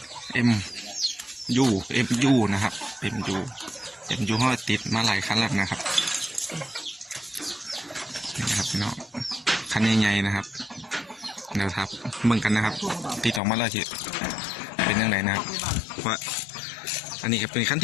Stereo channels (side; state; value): right; drops out; at 13.4 s